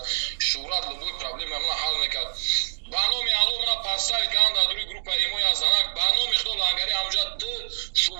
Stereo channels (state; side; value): silent; left; digital silence